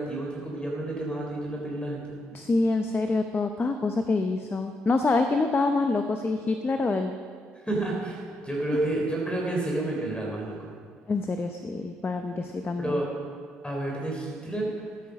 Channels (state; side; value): normal; both; correlation 0.80